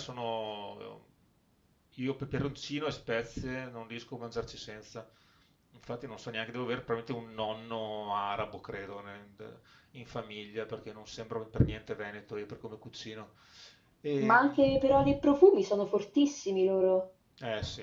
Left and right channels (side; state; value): both; identical; correlation 1.00